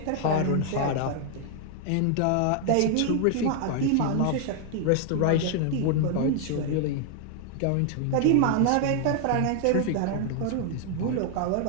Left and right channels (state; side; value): different; both; correlation 0.00